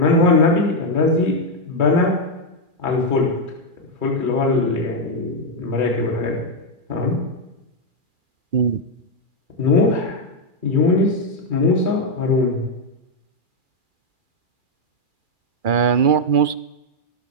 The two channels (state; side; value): late; left; 2.4 ms